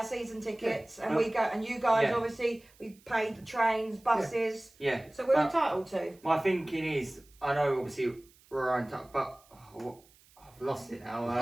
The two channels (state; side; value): noise; right; hiss, 29 dB below the sound